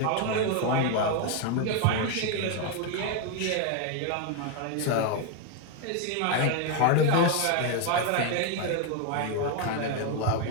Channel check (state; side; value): different; both; correlation 0.01